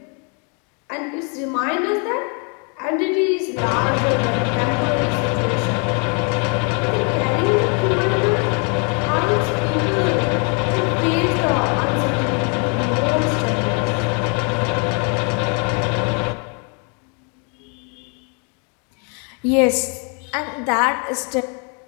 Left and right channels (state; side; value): quieter; right; 37.4 dB